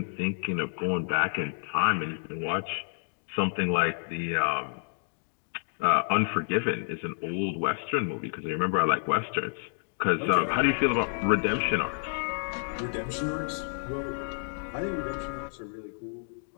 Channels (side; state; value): right; silent; digital silence